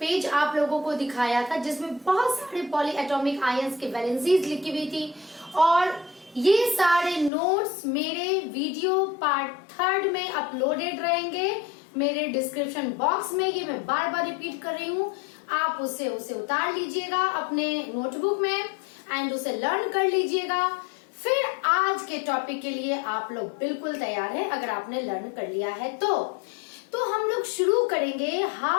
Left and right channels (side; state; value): right; drops out; at 7.3 s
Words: आप लोगों को दिखाया था जिसमें बहुत सारे पॉलीएटॉमिक आयंस के वैलेंसीज लिखी हुई थी और ये सारे नोट्स मेरे वीडियो पार्ट 3 में अपलोडेड रहेंगे मेरे डिस्क्रिप्शन बॉक्स में। ये मैं बार बार रिपीट कर रही हूँ, आप उसे उतार लीजिएगा अपने नोटबुक में एंड उसे लर्न कर लीजिएगा। फिर आज के टॉपिक के लिए आप लोग बिल्कुल तैयार हैं अगर आपने लर्न कर लिया है तो हम लोग शुरू करेंगे